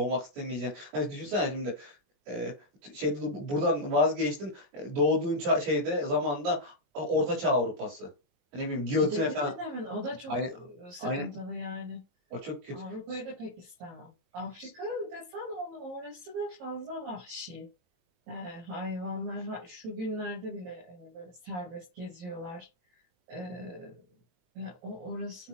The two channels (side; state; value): left; late; 24 ms